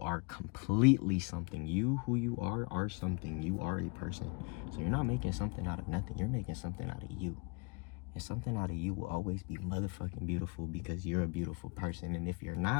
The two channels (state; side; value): quieter; right; 31.2 dB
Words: completely something. You, who you are something. You are a person. So you're not making something out of nothing. You're making something out of you. And something out of you will always be motherfucking beautiful because you're a beautiful person. And if you're